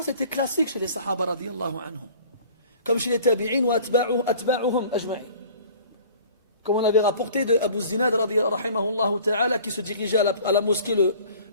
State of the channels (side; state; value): both; inverted; correlation -0.47